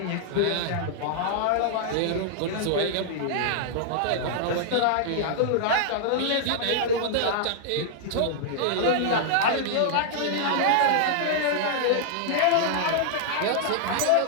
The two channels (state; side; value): different; both; correlation -0.01